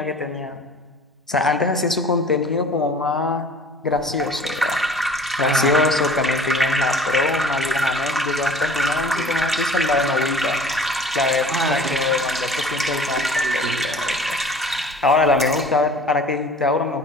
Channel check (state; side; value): normal; both; correlation 0.46